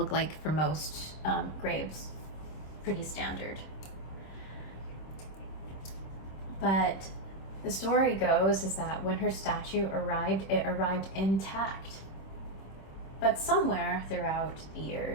like for most graves, pretty standard. But the story goes is that when her statue arrived, it arrived intact. But somewhere throughout the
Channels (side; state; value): right; late; 26 ms